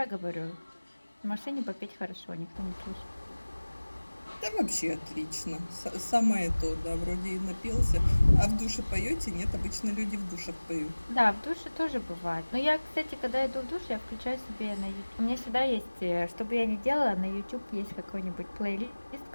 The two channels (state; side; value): inverted; both; correlation -1.00